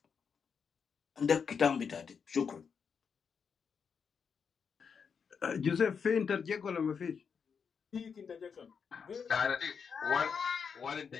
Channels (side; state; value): right; quieter; 6.3 dB